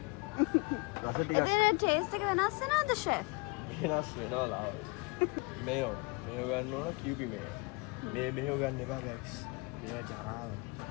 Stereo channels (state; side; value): quieter; right; 29.5 dB